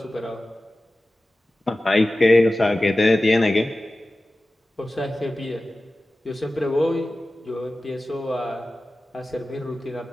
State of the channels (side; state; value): both; normal; correlation 0.95